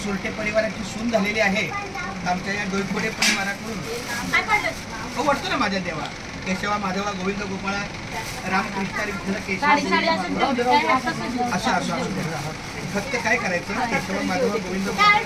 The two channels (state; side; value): identical; both; correlation 1.00